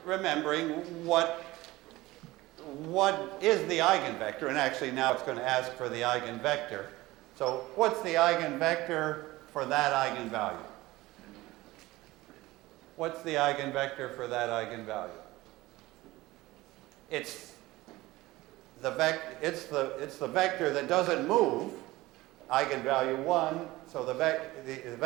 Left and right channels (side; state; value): left; quieter; 18.9 dB